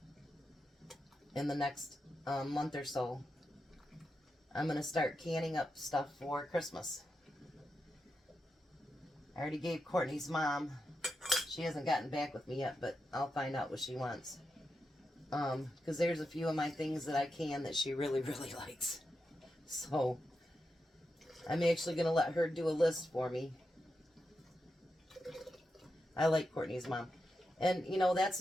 in the next month or so. I'm going to start canning up stuff for Christmas. I already gave Courtney's mom. She hasn't gotten back with me yet, but I'll find out what she wants. Because there's a few of my things that I can that she really, really likes. So, I'm actually going to let her do a list for me. I like Courtney's mom. And, you know, that's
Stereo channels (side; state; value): both; normal; correlation 0.87